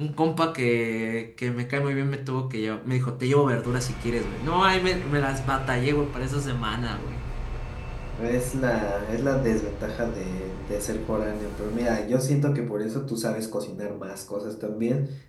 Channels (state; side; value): identical; both; correlation 1.00